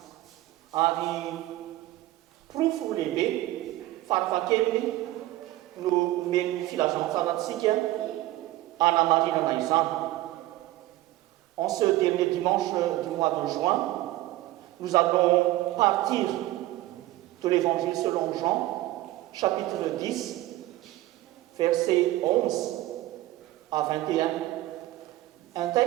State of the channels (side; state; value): left; quieter; 16.7 dB